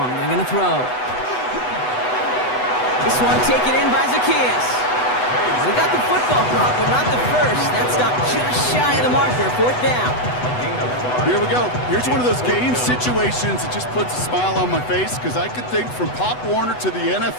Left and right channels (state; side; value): late; right; 8.0 ms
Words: They're going to throw. This one taken in by Zacchaeus. We got the football block, but not the first. That stopped just shy of the marker. 4th down. Here we go. Here's one of those game situations that just puts a smile on my face, because I could think from Pop Warner to the